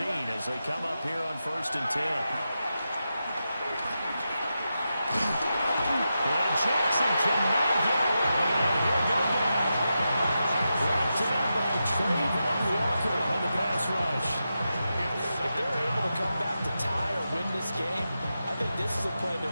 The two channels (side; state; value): both; inverted; correlation -0.89